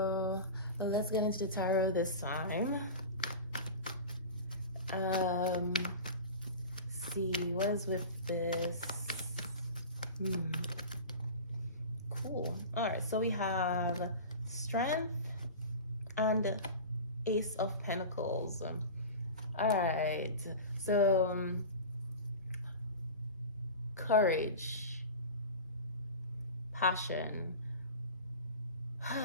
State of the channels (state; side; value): inverted; both; correlation -0.32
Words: let's get into the tarot this time. See, what is with this? Cool. All right, so we have Strength and Ace of Pentacles. All right, so courage, passion.